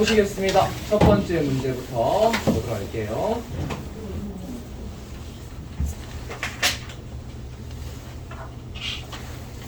첫 번째 문제부터 보도록 할게요.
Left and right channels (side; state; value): both; identical; correlation 1.00